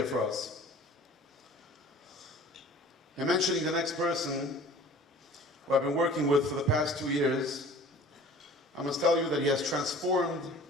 for us. And mentioning the next person who I've been working with for the past 2 years, I must tell you that he has transformed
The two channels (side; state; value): both; normal; correlation 0.46